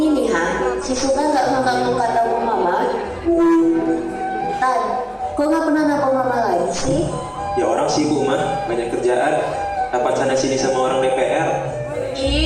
nih, si Sultan gak ngangkat kata mama. Tan, kok gak pernah nelfon mama lagi sih? Ya orang sibuk, Ma. Banyak kerjaan. Dapat sana sini sama orang DPR.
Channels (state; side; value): identical; both; correlation 1.00